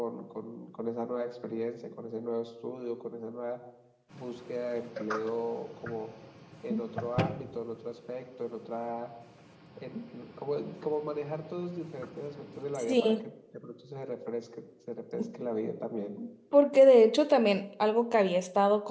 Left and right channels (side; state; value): both; identical; correlation 1.00